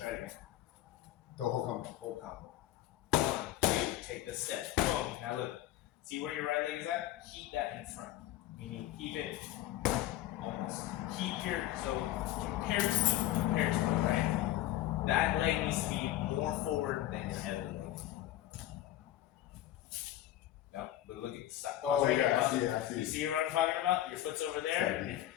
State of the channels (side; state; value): right; quieter; 13.7 dB